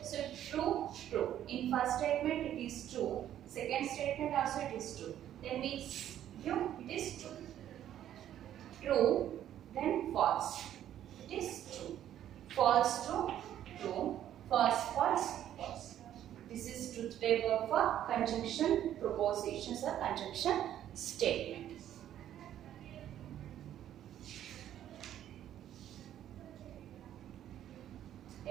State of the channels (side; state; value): left; quieter; 11.3 dB